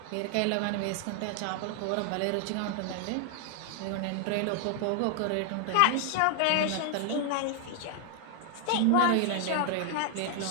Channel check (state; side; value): different; both; correlation 0.00